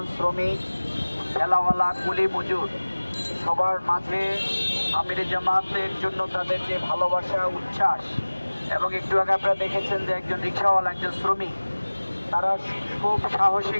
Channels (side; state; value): both; inverted; correlation -1.00